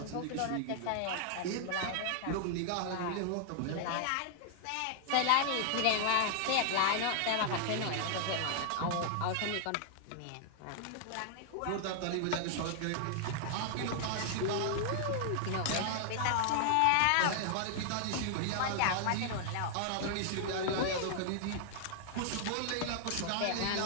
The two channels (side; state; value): both; different; correlation -0.01